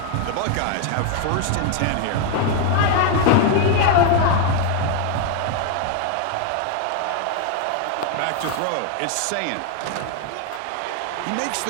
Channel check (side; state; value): both; different; correlation 0.00